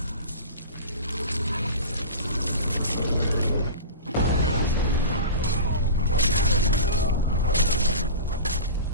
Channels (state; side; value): inverted; both; correlation -0.31